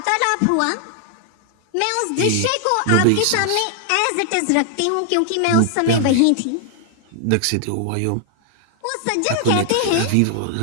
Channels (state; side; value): different; both; correlation 0.00